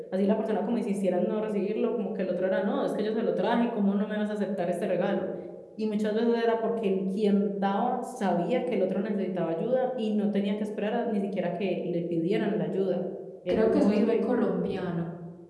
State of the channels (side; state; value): both; identical; correlation 1.00